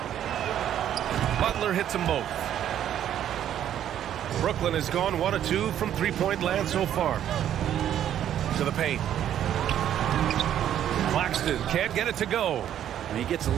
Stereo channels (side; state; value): left; quieter; 10.6 dB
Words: Butler hits them both. Brooklyn has gone 1 of 2 from three-point land so far. To the paint. Claxton can't get it to go. And he gets a